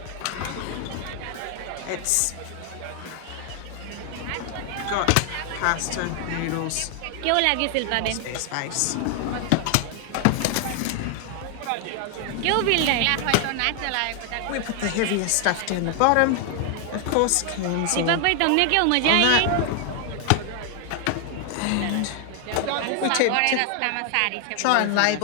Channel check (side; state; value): both; different; correlation 0.00